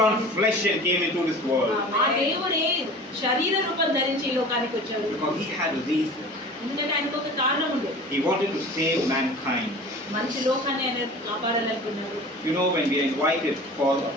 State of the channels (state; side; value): normal; both; correlation 0.40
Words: on flesh and came into this world. ఆ దేవుడే శరీర రూపం ధరించి ఈ లోకానికి వచ్చాడు. Because he had a reason. ఎందుకంటే ఆయనకు ఒక కారణం ఉంది. He wanted to save mankind. మనిషి లోకాన్ని ఆయన కాపాడాలనుకున్నాడు. When we are invited for a